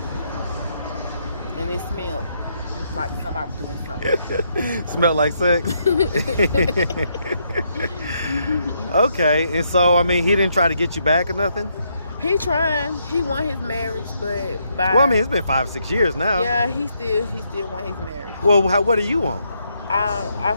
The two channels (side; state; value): both; inverted; correlation -0.76